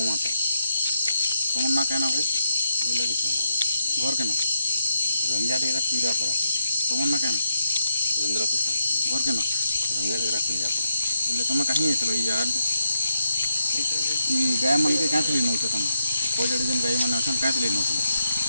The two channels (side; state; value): both; inverted; correlation -0.82